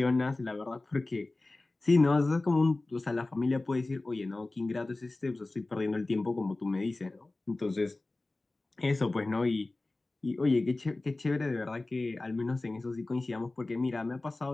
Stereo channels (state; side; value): quieter; right; 3.0 dB